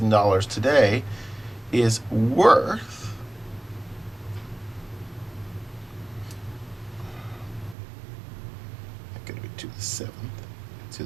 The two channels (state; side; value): drops out; left; at 7.8 s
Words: today is worth going to be to the seventh,